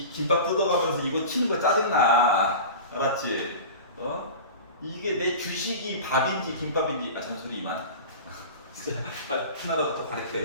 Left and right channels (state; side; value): inverted; both; correlation -0.33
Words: 김밥 뜯어가면서 이거 치는 거 짜증나. 알았지? 이게 내 주식이 밥인지 김밥인지 잔소리 이만. 빨리 하나라도 더